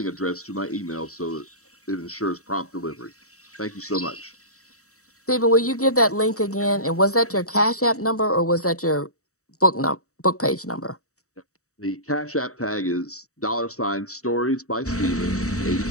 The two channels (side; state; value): right; late; 0.65 ms